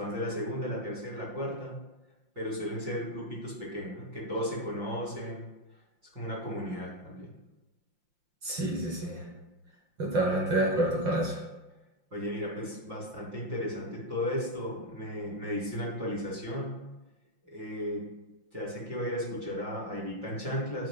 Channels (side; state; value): left; late; 5.7 ms